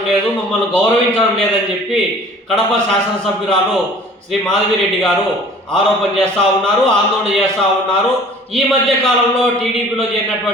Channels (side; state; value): both; normal; correlation 0.48